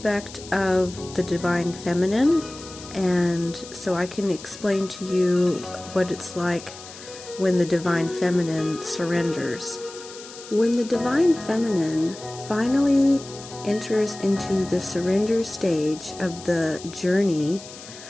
of the divine feminine, and so I can explain to you what it's like when the divine feminine surrenders. When the divine feminine finally enters into the surrender stage of the journey,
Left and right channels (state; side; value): noise; left; hiss, 16 dB below the sound